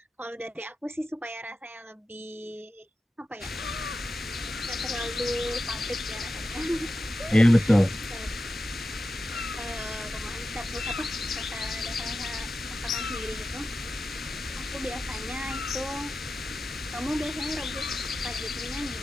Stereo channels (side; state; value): both; normal; correlation 0.92